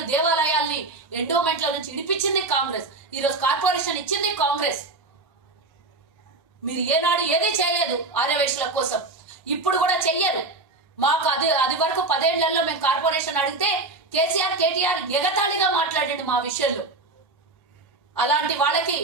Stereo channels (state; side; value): quieter; left; 3.3 dB